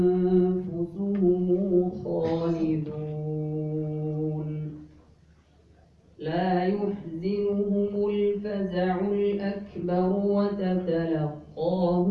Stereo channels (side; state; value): both; identical; correlation 1.00